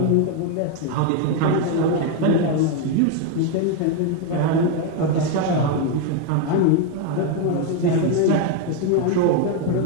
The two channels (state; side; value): different; both; correlation 0.01